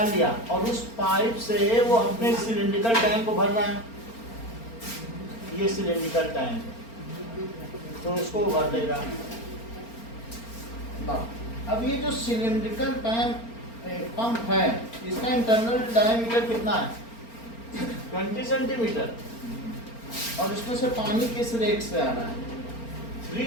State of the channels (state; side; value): late; right; 4.4 ms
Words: लिया और उस पाइप से वो अपने सिलिंड्रिकल टैंक को भर रहा है। ये सिलिंड्रिकल टैंक तो उसको भर देगा। अब ये जो सिलिंड्रिकल पंप है, इसका इंटरनल डायमीटर कितना है? 20 सेंटीमीटर, और इसमें से पानी किस रेट से आ रहा है?